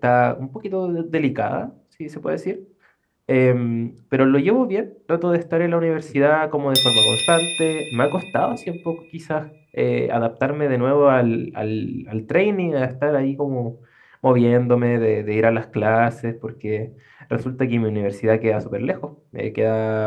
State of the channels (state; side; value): identical; both; correlation 1.00